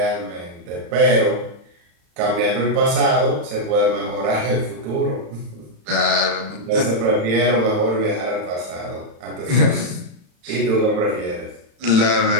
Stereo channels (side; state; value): left; late; 35 ms